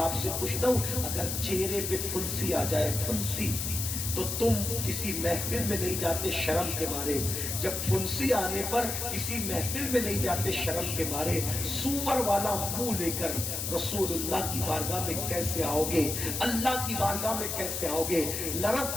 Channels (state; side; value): noise; left; hiss, 3 dB below the sound